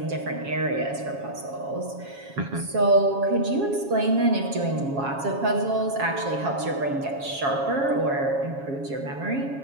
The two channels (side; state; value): left; late; 7.3 ms